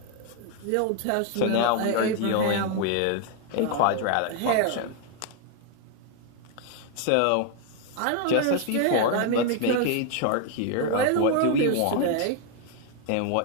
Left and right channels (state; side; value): different; both; correlation 0.00